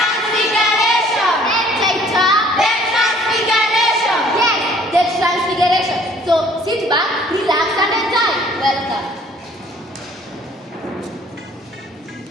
Entitled The Transfiguration. Yes, The Transfiguration. So sit back, relax and enjoy. Welcome.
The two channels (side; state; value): both; normal; correlation 0.57